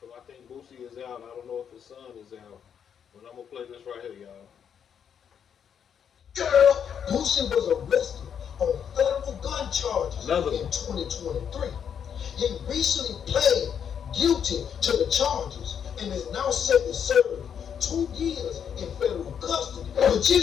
think Boosie is out. I don't know if his son is out. But I'm gonna play this right here, y'all. Girl, Boosie was arrested on federal gun charges in 2023. He recently pled guilty to the charges and is now set to serve 2 years in federal custody. But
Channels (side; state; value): right; quieter; 8.0 dB